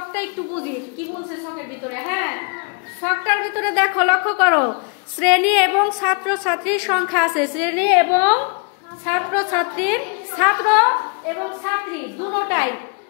একটু বুঝি কি বলছে ছকের ভিতরে। হ্যাঁ, ছকটার ভিতরে দেখো, লক্ষ্য করো, শ্রেণী এবং ছাত্র ছাত্রীর সংখ্যা আছে। শ্রেণী এবং ছাত্র ছাত্রীর, ছাত্র এবং ছাত্রী দুটোটাই।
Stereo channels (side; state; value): right; quieter; 36.7 dB